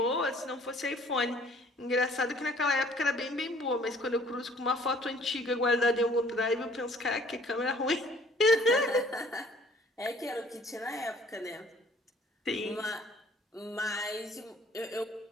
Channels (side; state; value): both; normal; correlation 0.56